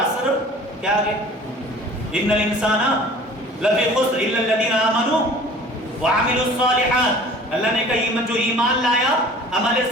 کیا آگے؟ ان الانسان لفی خسر الا الذین آمنوا وعملوا الصالحات. اللہ نے کہا جو ایمان لایا عمل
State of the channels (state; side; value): normal; both; correlation 0.46